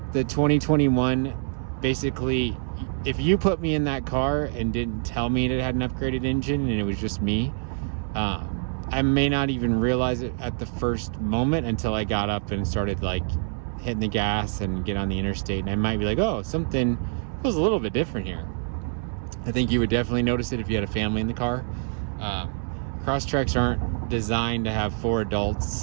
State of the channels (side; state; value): left; silent; 59 dB below the other